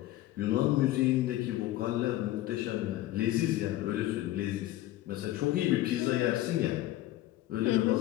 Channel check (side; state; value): right; quieter; 15.2 dB